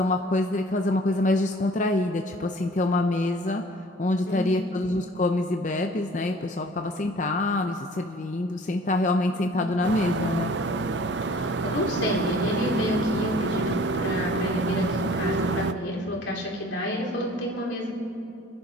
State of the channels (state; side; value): normal; both; correlation 0.50